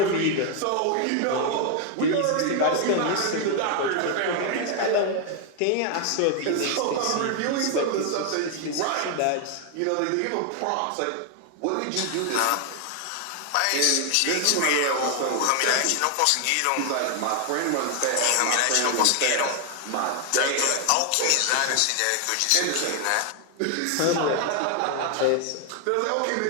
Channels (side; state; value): both; different; correlation 0.00